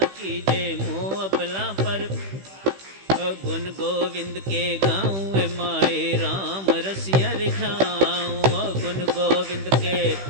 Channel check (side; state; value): left; late; 15 ms